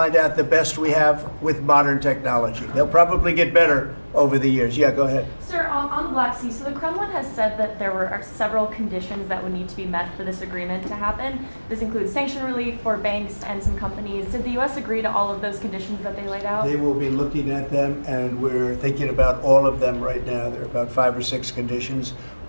out the best we have with modern technology. They'll probably get better over the years. Yeah, go ahead. Sir, on the Black Sea, so the Kremlin has said that there are several conditions that would need to be met for this agreement to happen. This includes sanction relief for banks and some companies. Did the U.S. agree to all of those conditions that they laid out? They will be looking at them, and we're thinking about all of them right now. There are about 5 or 6 conditions.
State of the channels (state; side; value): inverted; both; correlation -1.00